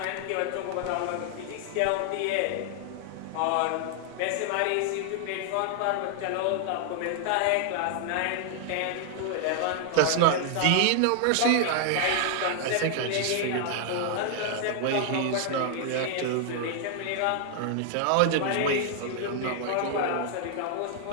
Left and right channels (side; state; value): both; different; correlation 0.00